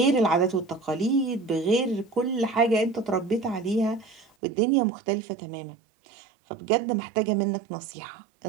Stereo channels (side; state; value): left; drops out; at 4.2 s